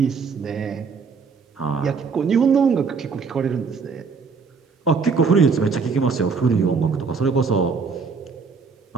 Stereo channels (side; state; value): left; quieter; 5.2 dB